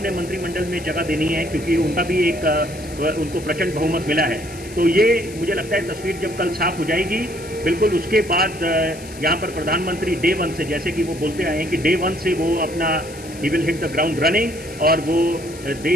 मंत्रिमंडल में जगह देनी है, क्योंकि उनका भी उनको प्रचंड बहुमत मिला है। तो ये मुझे लगता है तस्वीर जब कल साफ हो जाएगी, बिल्कुल उसके बाद यहाँ पर प्रधानमंत्री डे 1 से, जैसे कि वो बोलते आए हैं कि डे 1 से वो अपना he will hit the ground running, और वो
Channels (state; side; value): noise; left; hiss, 17 dB below the sound